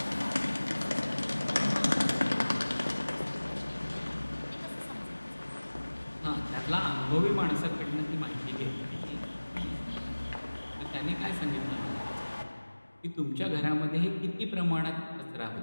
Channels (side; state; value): both; inverted; correlation -1.00